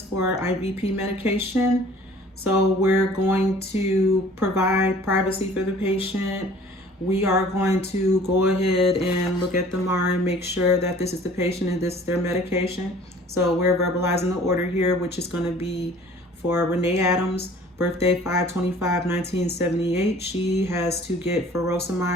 for IVP medication. So we're going to provide privacy for the patient. We are going to go ahead and look at the MAR and make sure that this is the patient and this is their medication. So we're verbalizing the order here, which is going to be for Renee Adams, birthday 5/25/1978. She has to get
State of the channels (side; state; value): both; normal; correlation 0.50